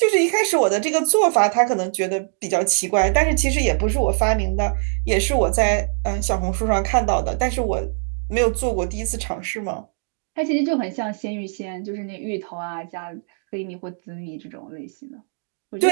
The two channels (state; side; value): silent; left; digital silence